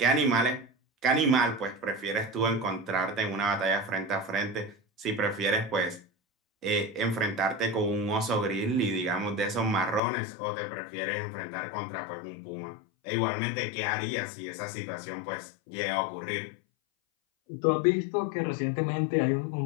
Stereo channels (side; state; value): right; drops out; at 10.0 s